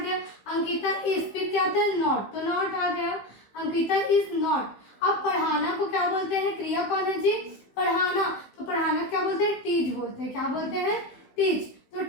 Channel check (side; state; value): right; late; 15 ms